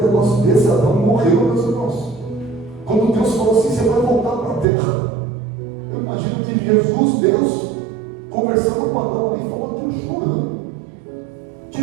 negócio desse. Adão morreu, meus irmãos. Quando Deus falou assim: você vai voltar para a terra, eu imagino que Jesus, Deus, conversando com Adão ali, falou aquilo chorando.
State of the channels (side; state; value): left; drops out; at 4.7 s